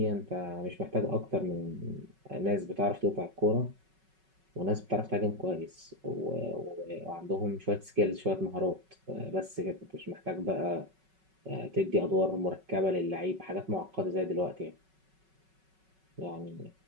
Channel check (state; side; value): late; left; 5.3 ms